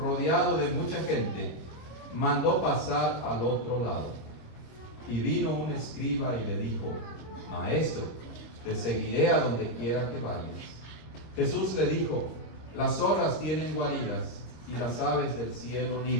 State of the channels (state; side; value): late; right; 26 ms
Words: de mucha gente, mandó pasar al otro lado. Y vino un escriba y le dijo: Maestro, te seguiré a donde quiera que vayas. Jesús le dijo: las zorras tienen guaridas y las aves del cielo